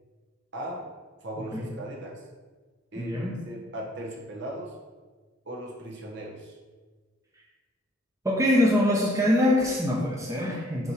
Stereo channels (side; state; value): both; normal; correlation 0.62